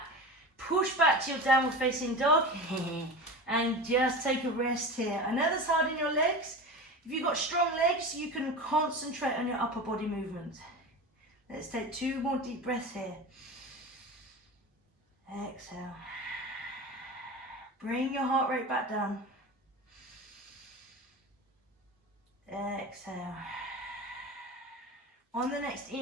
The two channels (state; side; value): normal; both; correlation 0.29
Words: Push back to your downward facing dog and just take a rest here. I know that's hard in your legs. If you've got strong legs, you can concentrate on your upper body movement. Let's take 2 more deep breaths here. Exhale. Bring your heart rate back down. Exhale. On the next